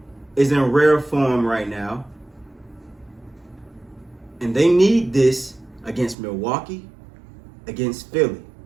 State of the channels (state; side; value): drops out; left; at 6.2 s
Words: is in rare form right now. And they need this against Milwaukee, against Philly,